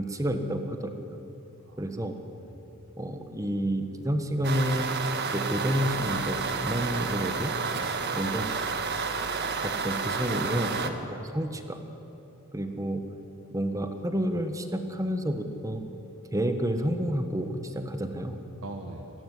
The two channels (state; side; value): normal; both; correlation 0.57